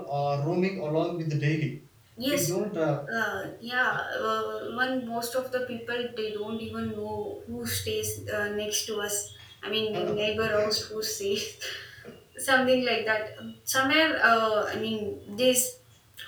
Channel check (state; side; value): identical; both; correlation 1.00